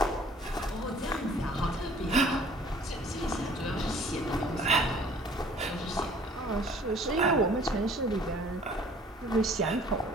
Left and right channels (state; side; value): normal; both; correlation 0.53